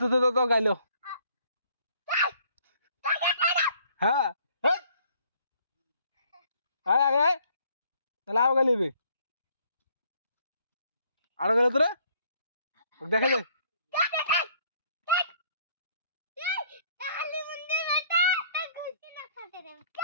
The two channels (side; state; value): both; inverted; correlation -0.63